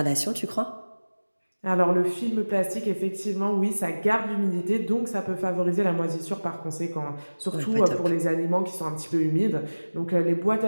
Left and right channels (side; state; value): both; inverted; correlation -1.00